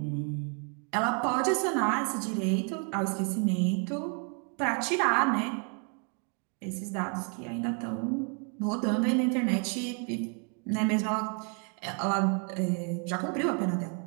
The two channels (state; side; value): quieter; left; 39.5 dB